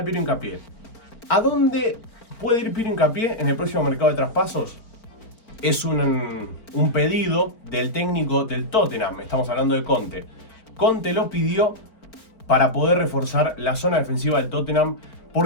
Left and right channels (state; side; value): late; right; 4.4 ms